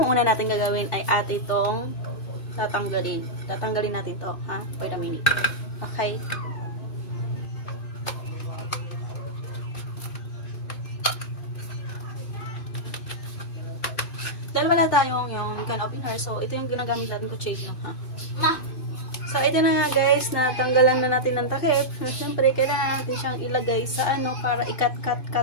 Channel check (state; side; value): late; right; 2.5 ms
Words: una natin gagawin ay ate itong tatanggalin. Tatanggalin natin to, ha? Wait a minute. Okay. Dalawa na tayong yung can open her. So, ito yung ginagamit natin ko change ha. So, ito na nga guys, natanggalan na natin ng takip. Siyempre, kailangan natin siyang ilagay sa para i-cut